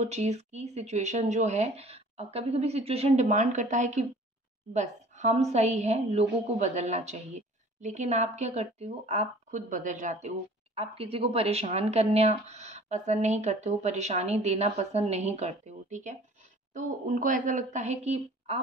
चीज़ की सिचुएशन जो है, कभी कभी सिचुएशन डिमांड करता है कि बस हम सही हैं, लोगों को बदलना चाहिए। लेकिन आप क्या करते हो, आप खुद बदल जाते हो। आप किसी को परेशान करना पसंद नहीं करते हो, परेशानी देना पसंद नहीं करते हो। ठीक है, तो उनको ऐसा लगता है कि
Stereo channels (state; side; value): normal; both; correlation 0.49